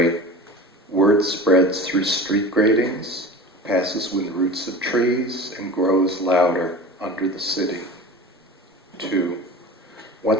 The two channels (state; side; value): normal; both; correlation 0.35